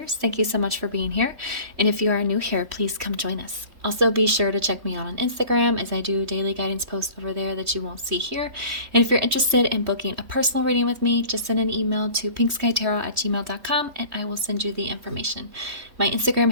Thank you so much for being here. And if you are new here, please come join us. Also, be sure to check me out on Instagram as I do daily guidance posts over there that you won't see here. And if you're interested in booking a personal reading with me, just send an email to pinkskytarot@gmail.com and I will send you the information. My Instagram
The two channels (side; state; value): left; late; 3.2 ms